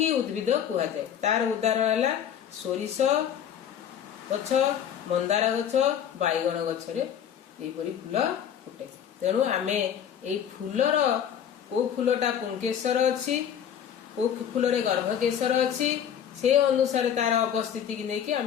उद्भिद कहा जाए। तार उदाहरण है सोरिष गछ, मंदार गछ, बैगन गछ रे एपरि फूल फुटे। तेणु आमे एई फूलर को फूलटा पुंकेसर अछि, को फूल रे गर्भकेशर अछि, से अनुसार तार अवस्थिति की नेकी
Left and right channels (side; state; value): right; quieter; 9.0 dB